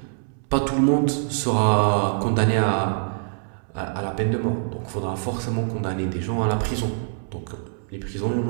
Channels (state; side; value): silent; left; 62 dB below the other